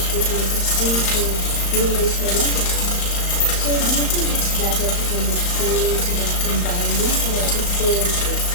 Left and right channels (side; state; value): right; late; 35 ms